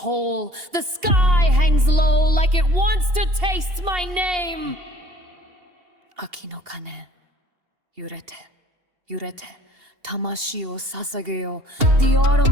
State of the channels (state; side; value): late; left; 2.8 ms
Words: The sky hangs low like it wants to taste my name. Aki no kane, yurete, yurete. Tamashi o sasageyo. The